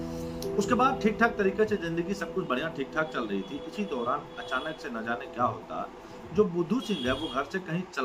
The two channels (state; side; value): identical; both; correlation 1.00